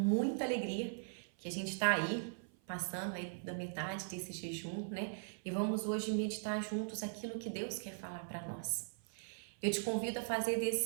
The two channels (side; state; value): left; silent; 51 dB below the other